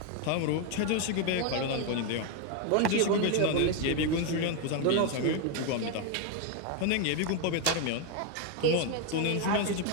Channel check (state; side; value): different; both; correlation 0.01